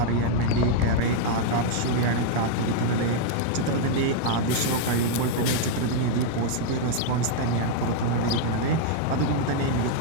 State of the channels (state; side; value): different; both; correlation 0.00